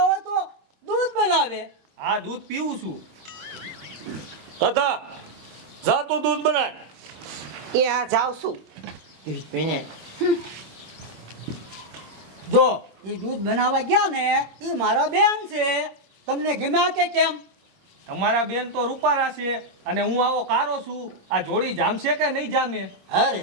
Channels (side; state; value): left; late; 26 ms